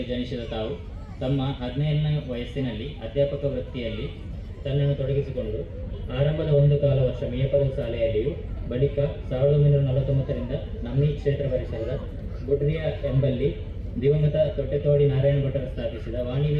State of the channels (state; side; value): identical; both; correlation 1.00